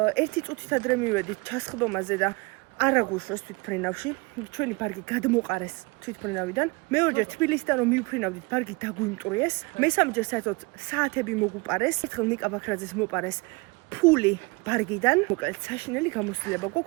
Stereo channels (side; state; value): left; quieter; 26.7 dB